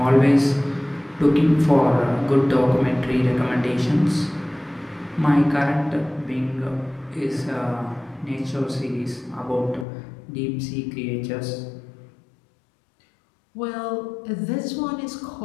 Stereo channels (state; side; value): drops out; right; at 9.9 s